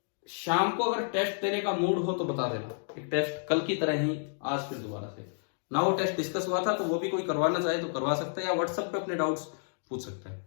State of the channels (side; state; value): right; silent; digital silence